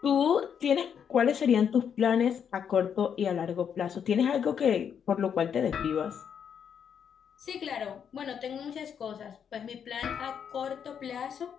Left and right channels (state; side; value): quieter; right; 7.8 dB